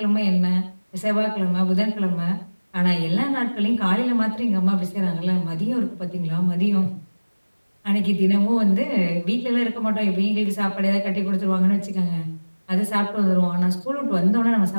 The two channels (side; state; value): both; inverted; correlation -1.00